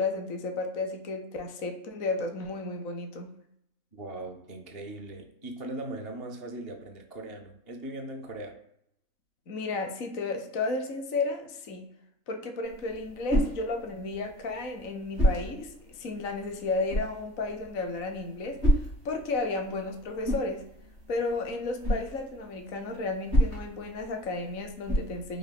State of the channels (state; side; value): late; right; 3.9 ms